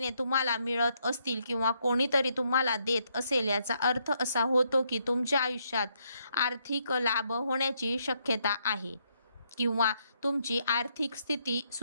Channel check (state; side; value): inverted; both; correlation -0.75